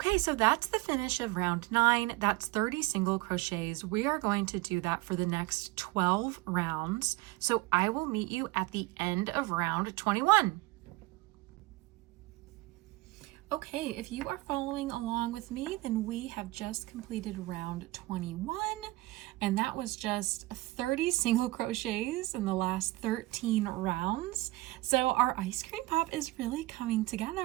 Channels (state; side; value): quieter; left; 20.1 dB